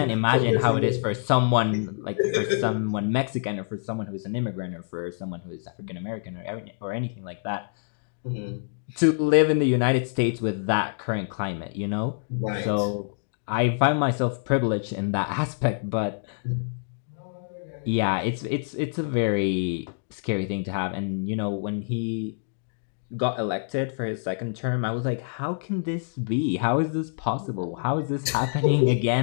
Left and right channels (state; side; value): silent; right; digital silence